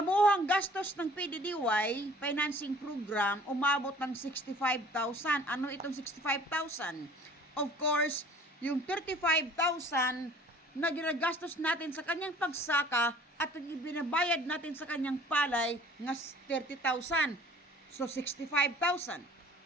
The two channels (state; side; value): normal; both; correlation 0.51